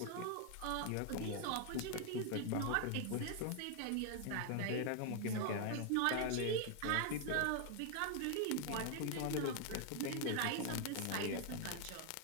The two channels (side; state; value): both; different; correlation 0.00